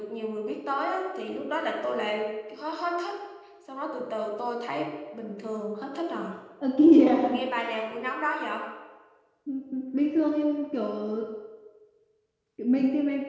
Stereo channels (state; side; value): identical; both; correlation 1.00